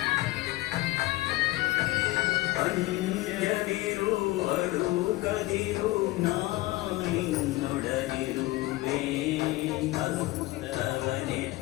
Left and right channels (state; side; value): quieter; right; 19.3 dB